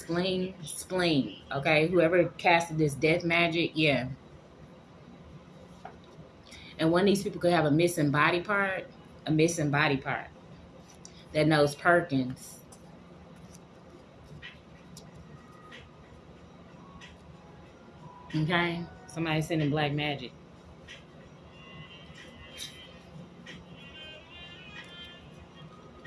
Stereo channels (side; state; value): both; identical; correlation 1.00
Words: okay? Whoever casted this death magic, yeah. And one of these people could have a missing body part that knows Perkins. Okay? Somebody sending black magic.